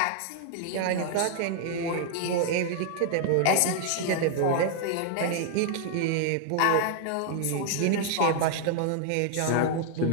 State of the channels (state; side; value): different; both; correlation 0.00